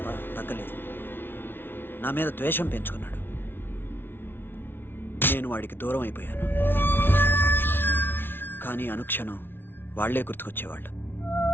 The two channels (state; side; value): late; right; 0.11 ms